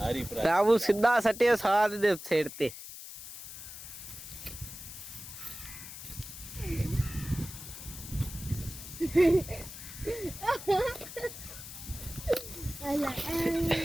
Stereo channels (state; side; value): noise; left; hiss, 12 dB below the sound